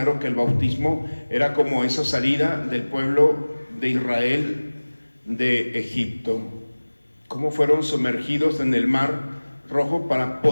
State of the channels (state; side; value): inverted; both; correlation -1.00